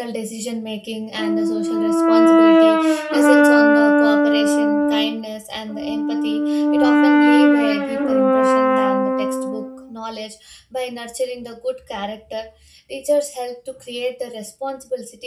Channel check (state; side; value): identical; both; correlation 1.00